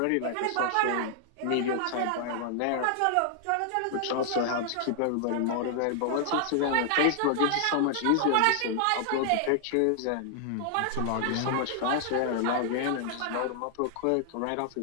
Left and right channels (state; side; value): different; both; correlation -0.01